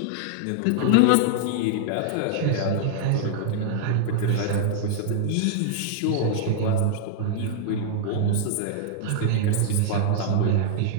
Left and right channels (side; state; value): both; different; correlation -0.01